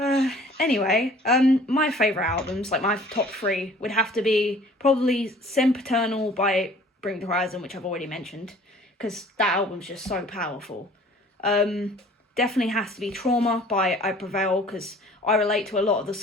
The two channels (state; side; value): normal; both; correlation 0.51